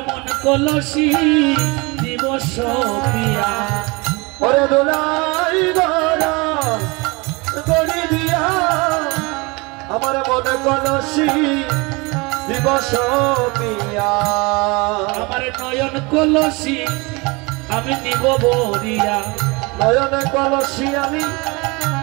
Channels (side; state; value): left; quieter; 26.7 dB